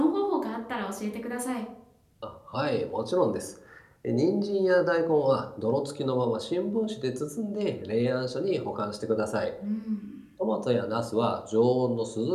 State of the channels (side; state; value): both; identical; correlation 1.00